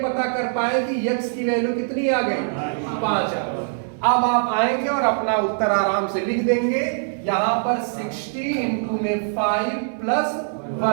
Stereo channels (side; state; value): left; silent; digital silence